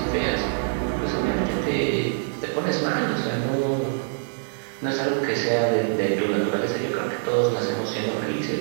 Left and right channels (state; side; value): silent; left; digital silence